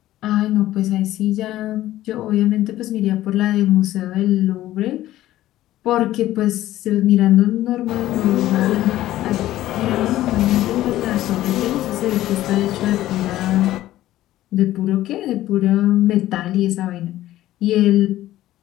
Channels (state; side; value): quieter; right; 14.6 dB